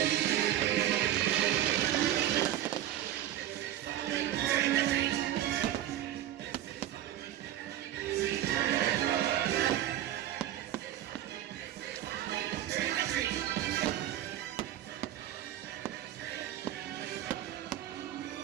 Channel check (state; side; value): quieter; left; 12.3 dB